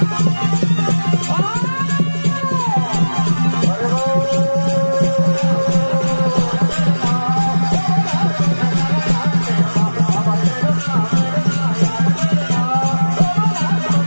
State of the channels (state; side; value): inverted; both; correlation -1.00